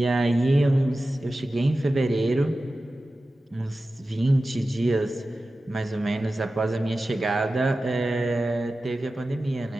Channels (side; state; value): both; normal; correlation 0.94